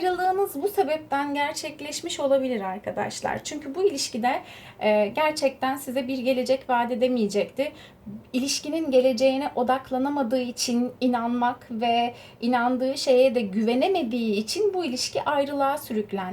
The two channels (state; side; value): identical; both; correlation 1.00